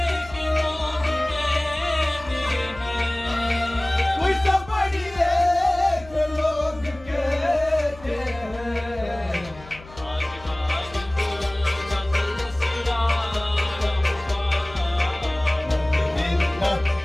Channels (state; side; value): noise; left; hum, 19 dB below the sound